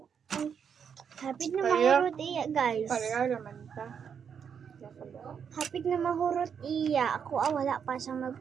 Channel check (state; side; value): quieter; left; 7.3 dB